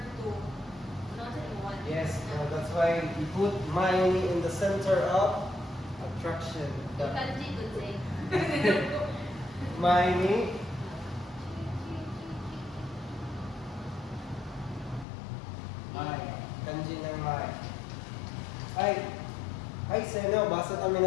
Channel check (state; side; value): drops out; right; at 15.1 s